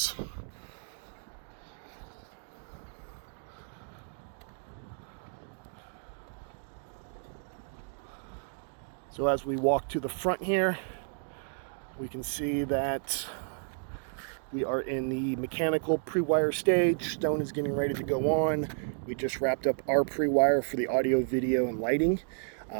So as we walk to the front here, we can see that we are in the mechanical pre-wire stage. Stone is getting ready to go on. We just wrapped up our pre-wire for the audio, video, and lighting.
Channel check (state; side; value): silent; left; 56 dB below the other